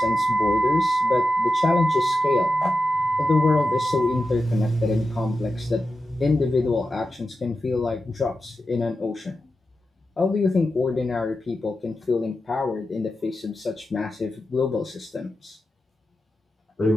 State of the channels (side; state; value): both; normal; correlation 0.90